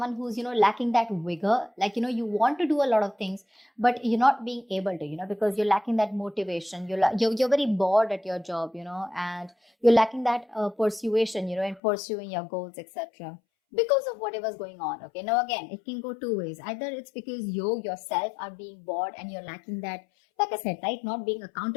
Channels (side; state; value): right; drops out; at 11.8 s